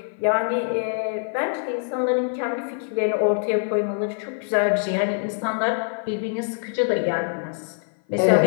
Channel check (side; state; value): right; silent; 55 dB below the other